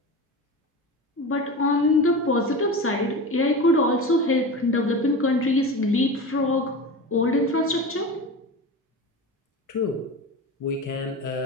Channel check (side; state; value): both; normal; correlation 0.28